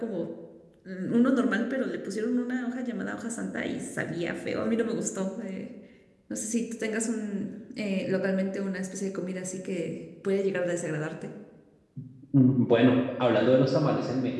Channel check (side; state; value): both; identical; correlation 1.00